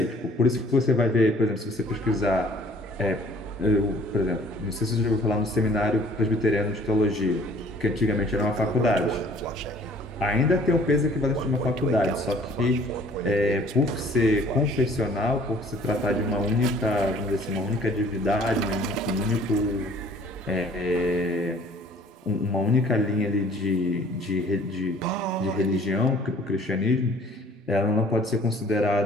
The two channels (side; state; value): both; normal; correlation 0.54